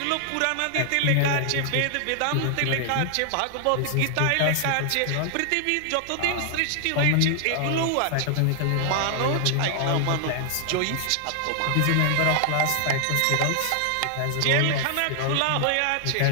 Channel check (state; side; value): different; both; correlation 0.00